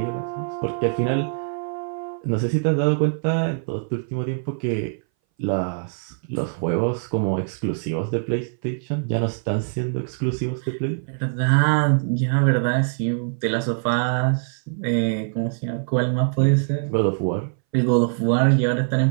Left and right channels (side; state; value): left; silent; 60 dB below the other